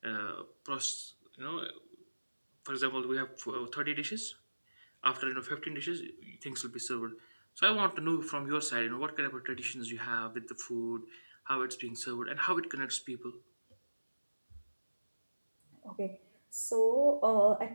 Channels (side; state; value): both; inverted; correlation -1.00